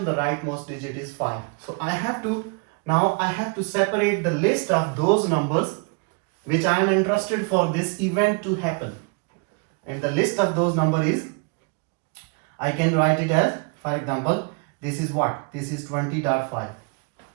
the rightmost digit is 5. So I have to separate the list of those numbers which I am interested for this event to happen. And the list of those numbers is, I can write it as, for example, this is what? This is 20.5.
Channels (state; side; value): quieter; left; 33.5 dB